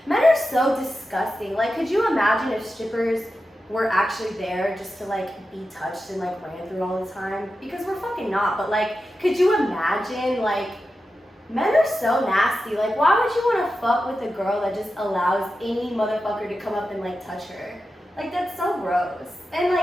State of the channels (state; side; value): normal; both; correlation 0.91